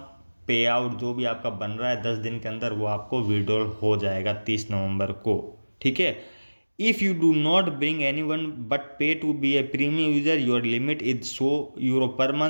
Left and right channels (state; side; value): inverted; both; correlation -1.00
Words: पे आउट जो भी आपका बन रहा है 10 दिन के अंदर वो आपको विड्रॉल हो जाएगा 30 नवंबर को, ठीक है। If you do not bring anyone but pay to be a premium user, your limit is €100 per